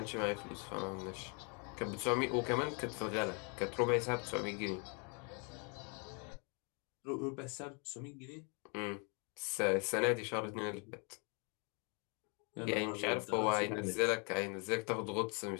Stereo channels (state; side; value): quieter; right; 35.3 dB